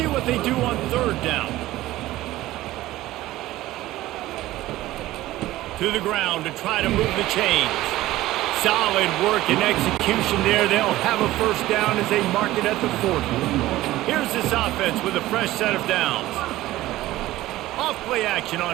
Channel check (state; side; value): quieter; left; 16.3 dB